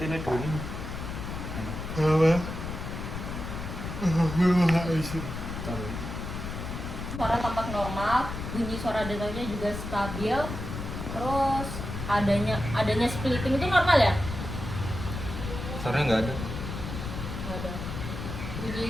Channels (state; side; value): noise; left; rumble, 6 dB below the sound